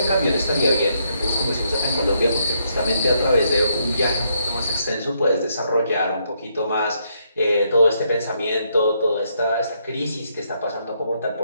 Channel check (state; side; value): inverted; both; correlation -0.75